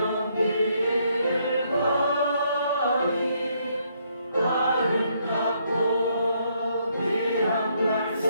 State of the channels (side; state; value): both; inverted; correlation -0.72